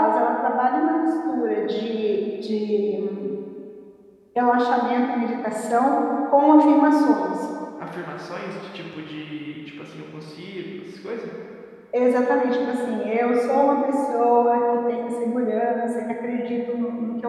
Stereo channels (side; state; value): both; identical; correlation 1.00